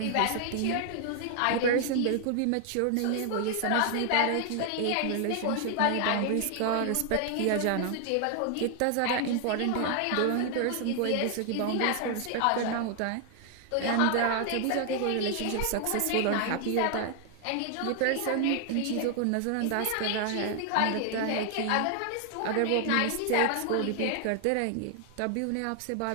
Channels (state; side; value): different; both; correlation 0.00